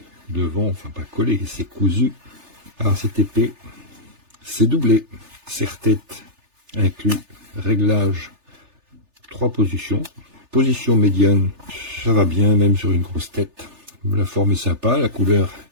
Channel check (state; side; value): late; left; 3.4 ms